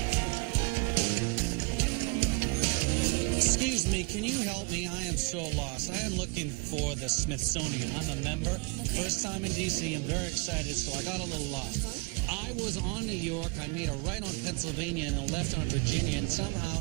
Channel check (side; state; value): left; quieter; 29.5 dB